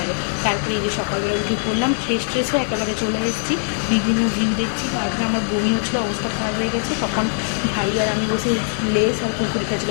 তারপরে এই যে সকালবেলা উঠে পড়লাম, ফ্রেশ ট্রেশ হয়ে একেবারে চলে এসেছি, বিভিন্ন ভিউ দেখছি। তারপরে আমার বমি হচ্ছিলো, অবস্থা খারাপ হয়ে গেছে। তখন ভাই আর আমি বসে লেস আর কুরকুরি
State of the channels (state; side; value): silent; right; 65 dB below the other